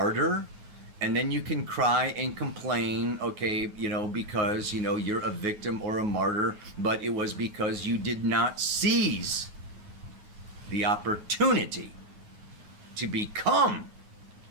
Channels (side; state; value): left; late; 9.4 ms